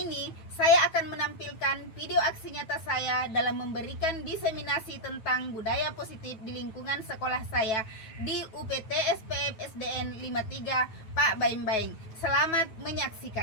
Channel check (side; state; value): right; late; 9.2 ms